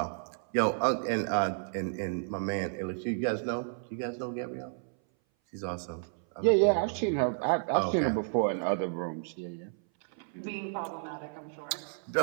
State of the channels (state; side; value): silent; left; 57 dB below the other